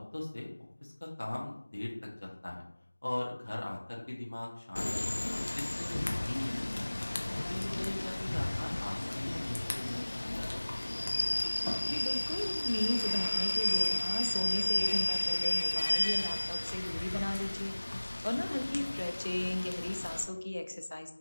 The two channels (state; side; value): inverted; both; correlation -1.00